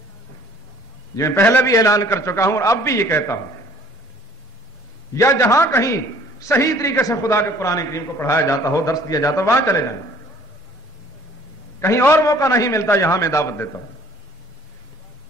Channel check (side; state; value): both; normal; correlation 0.54